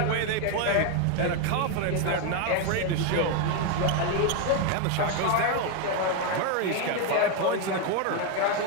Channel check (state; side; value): different; both; correlation 0.01